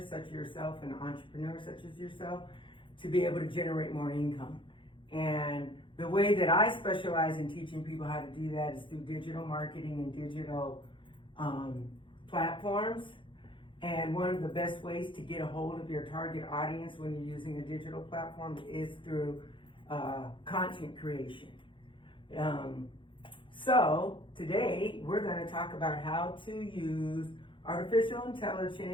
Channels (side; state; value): right; late; 0.24 ms